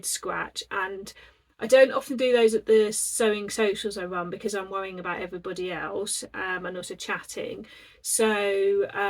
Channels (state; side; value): identical; both; correlation 1.00